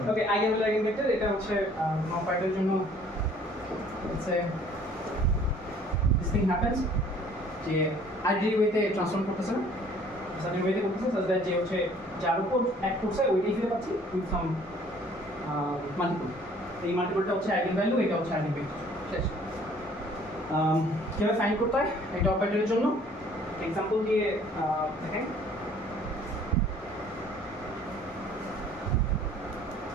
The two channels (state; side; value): normal; both; correlation 0.55